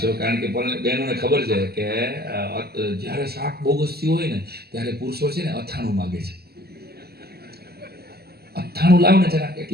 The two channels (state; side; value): late; left; 0.46 ms